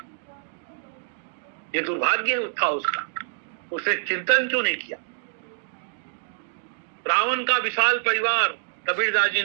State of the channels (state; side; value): silent; left; digital silence